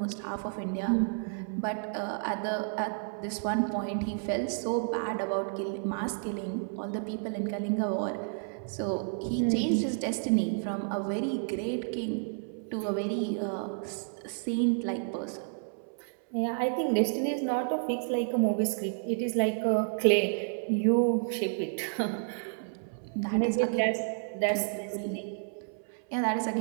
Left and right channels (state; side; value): silent; left; 57 dB below the other